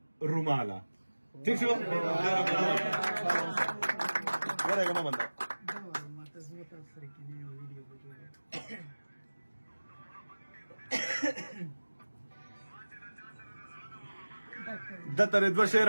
روماله ٹھیک شو ورېږه مه بنده د ترې دوه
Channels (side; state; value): both; inverted; correlation -1.00